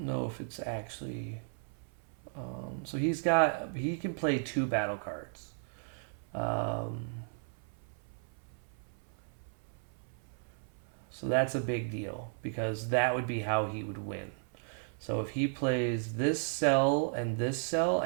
know if it's actually. So he can play 2 battle cards. So that's a big deal because that would be how he would win. So if he plays this cell and this cell,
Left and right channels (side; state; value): left; silent; 54 dB below the other